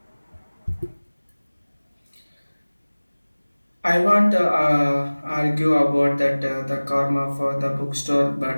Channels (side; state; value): both; inverted; correlation -1.00